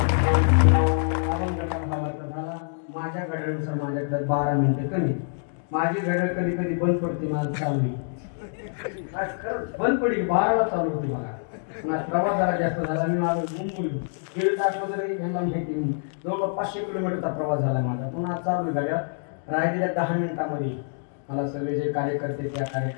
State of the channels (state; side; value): silent; right; digital silence